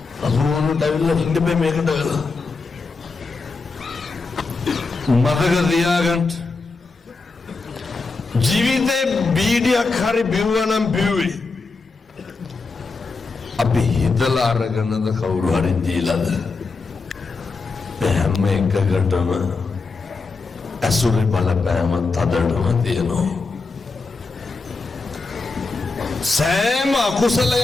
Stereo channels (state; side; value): quieter; right; 4.1 dB